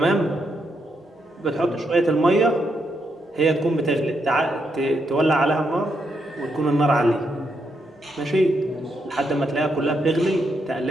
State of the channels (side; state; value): both; normal; correlation 0.80